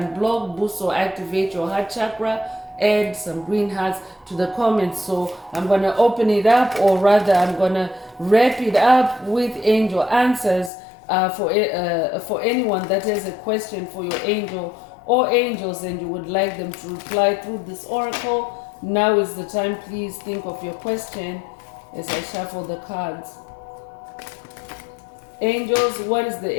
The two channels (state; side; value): drops out; right; at 10.7 s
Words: boost, or activate your heart chakra, add some green hearts to the comments. So I'm going to open it up, or rather I'm going to wrap it up with angel answers for anyone that has a question for your angel or angels and you would like them to reply through this oracle. Now is the time. Please think of your question as I shuffle the cards. Angels, what is the